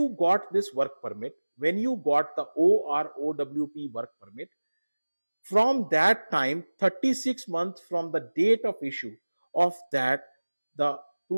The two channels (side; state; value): both; inverted; correlation -1.00